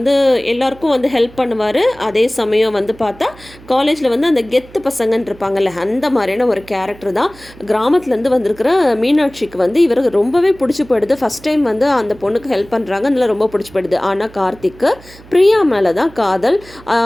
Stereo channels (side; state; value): right; noise; hum, 22 dB below the sound